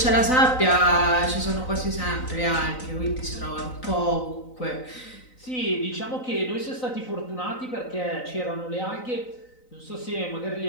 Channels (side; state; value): right; late; 3.9 ms